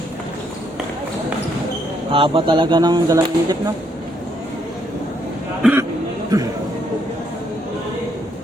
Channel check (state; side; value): normal; both; correlation 0.73